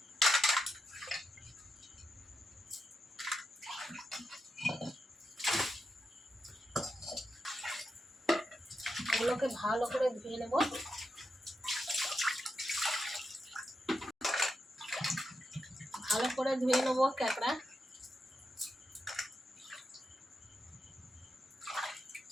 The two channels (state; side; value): normal; both; correlation 0.86